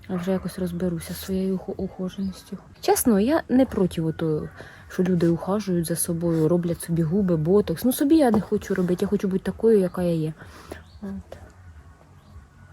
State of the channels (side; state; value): both; identical; correlation 1.00